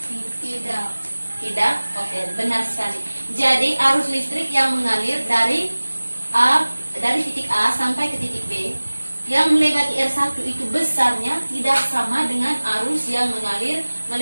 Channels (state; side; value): inverted; both; correlation -1.00